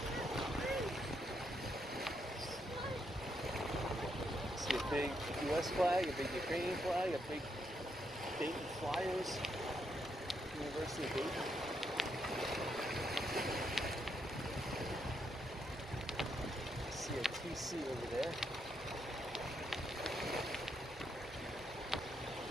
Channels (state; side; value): normal; both; correlation 0.78